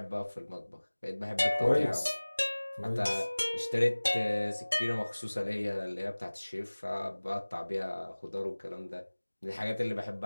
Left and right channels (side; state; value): both; inverted; correlation -1.00